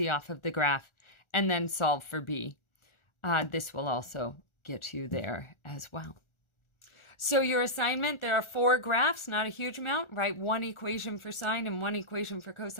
off of the graph and then solve for b. This will also get you there as well. So your assignment, there are 4 graphs, not a huge amount. Write one equation for sine and one equation for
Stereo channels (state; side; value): late; right; 1.4 ms